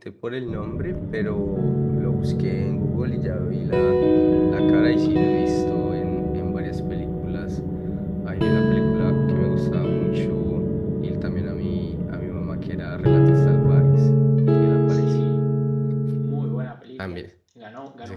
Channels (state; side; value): identical; both; correlation 1.00